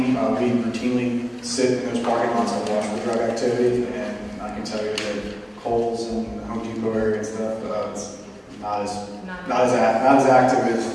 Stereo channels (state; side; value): identical; both; correlation 1.00